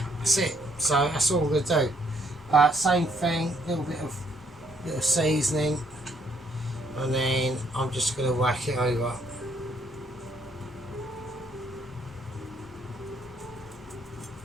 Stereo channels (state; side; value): normal; both; correlation 0.69